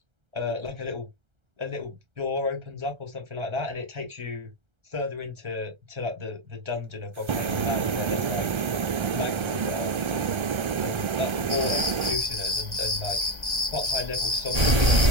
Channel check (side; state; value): left; late; 1.3 ms